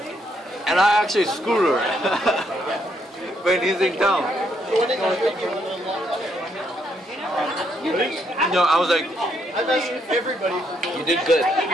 And I actually screwed her when he's in town. You know, I was like, You did good.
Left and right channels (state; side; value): normal; both; correlation 0.74